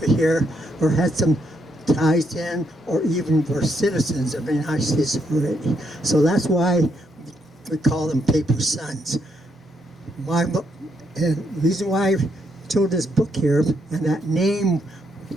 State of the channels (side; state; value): both; normal; correlation 0.77